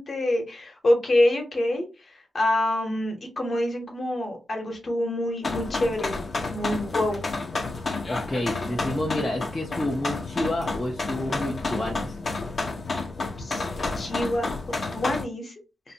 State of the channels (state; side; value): normal; both; correlation 0.91